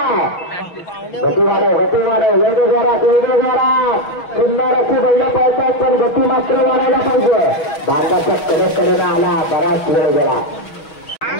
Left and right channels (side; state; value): right; late; 6.2 ms